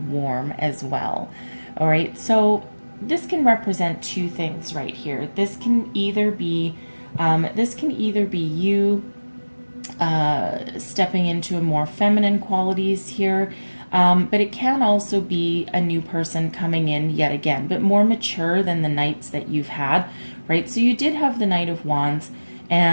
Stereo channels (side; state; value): both; inverted; correlation -1.00